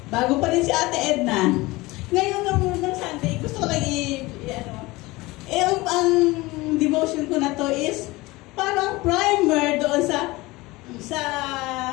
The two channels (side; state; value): right; quieter; 21.2 dB